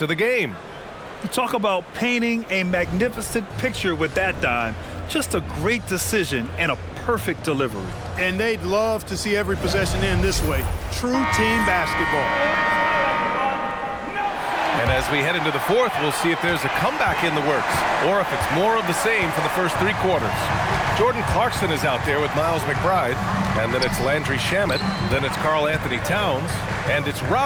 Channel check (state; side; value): identical; both; correlation 1.00